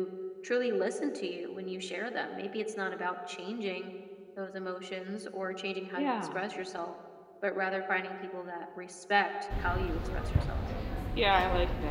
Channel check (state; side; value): identical; both; correlation 1.00